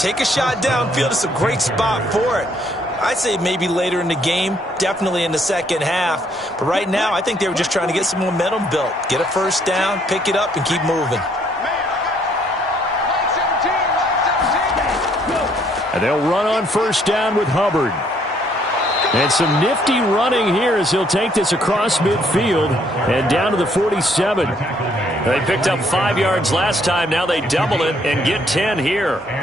a shot downfield. It's a great spot for it. I'd say maybe later in the game, definitely in the second half. But right now, I think they were just trying to get some momentum built. Get a first down, pick it up, and keep moving. And they'll run on first down with Hubbard. And some nifty running here as he'll take this across midfield and down to the 47. They picked up 5 yards last time. Now they double it and get 10 here.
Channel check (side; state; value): both; normal; correlation 0.67